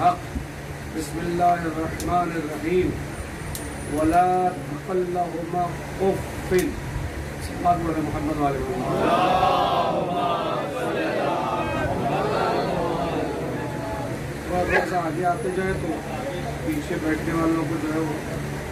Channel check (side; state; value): both; identical; correlation 1.00